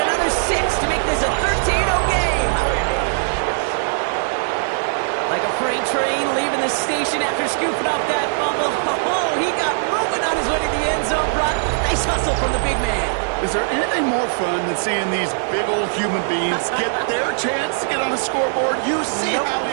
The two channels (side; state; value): left; silent; digital silence